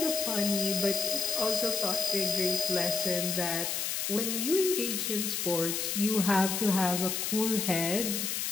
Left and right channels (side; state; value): left; noise; hiss, 1 dB below the sound